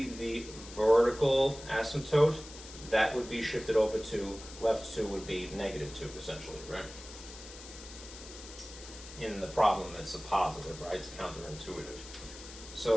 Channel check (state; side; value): noise; left; hiss, 15 dB below the sound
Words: the vertical asymptote, that would be shifted over to left 2 would be -2, essentially, right? In the problem, it's a positive, right? It's counterintuitive.